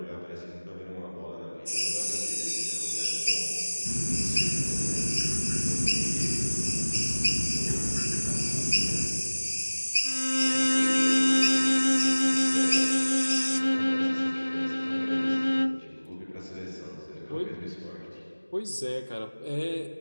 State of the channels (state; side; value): inverted; both; correlation -1.00